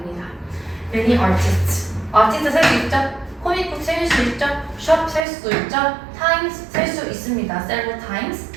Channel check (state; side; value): drops out; left; at 5.2 s